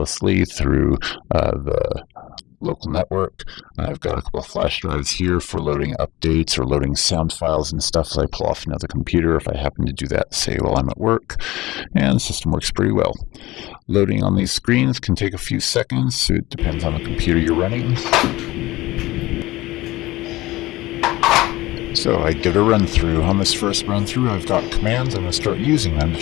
through the local network. I've got a couple of flash drives here for loading updates or loading sound files and stuff as I pull off another computer if I happen to do that, say, while I'm at work. And the system works pretty well. Loading on these screens can take a few seconds, so it depends on the computer you're running. So I give it a run through. On this first run through, I've got commands. I'm going to start using them to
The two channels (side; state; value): right; quieter; 18.6 dB